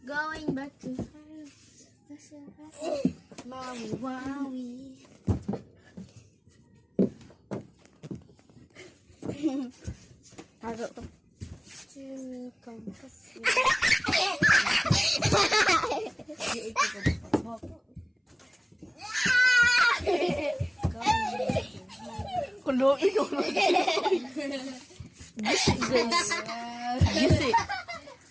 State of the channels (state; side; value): identical; both; correlation 1.00